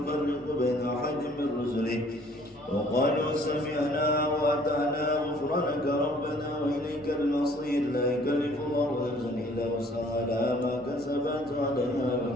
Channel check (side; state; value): both; normal; correlation 0.57